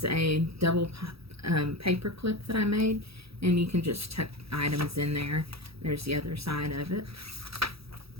a double paper clip that I made, and you can just tuck items in there. There's the other side of it.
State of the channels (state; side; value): late; left; 0.77 ms